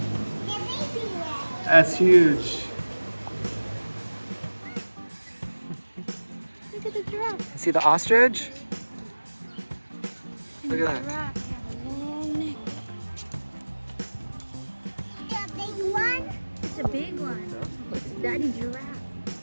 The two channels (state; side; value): inverted; both; correlation -1.00